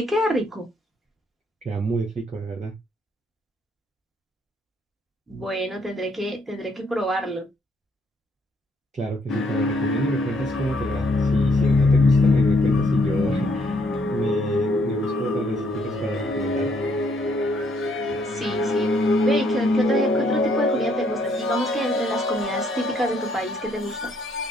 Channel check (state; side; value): normal; both; correlation 0.69